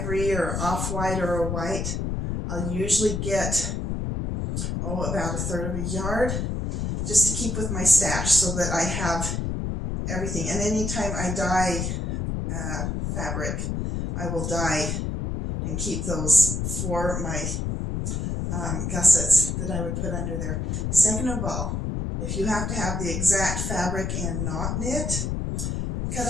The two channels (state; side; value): noise; left; rumble, 2 dB below the sound